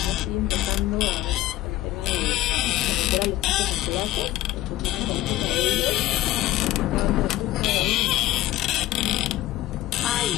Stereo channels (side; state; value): right; quieter; 15.3 dB